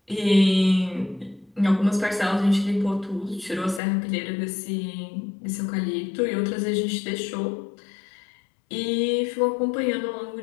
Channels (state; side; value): drops out; right; at 3.8 s